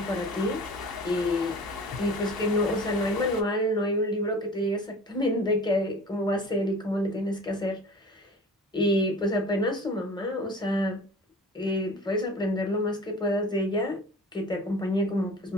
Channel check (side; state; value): both; normal; correlation 0.41